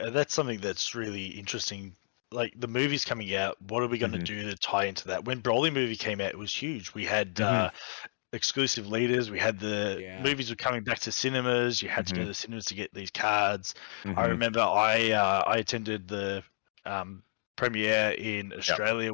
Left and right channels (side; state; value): right; silent; digital silence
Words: something that's really interesting. Like, the movie's coming out, what are we going to do to tie into that? When Broly movie came out, it was huge. We had exclusive leaders. We had the movies were coming back to cinemas. You had to go to the cinemas to get these cards. I remember I attended the premiere in Australia